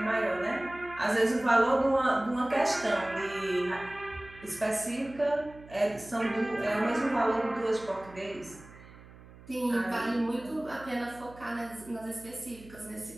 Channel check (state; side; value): noise; right; hum, 20 dB below the sound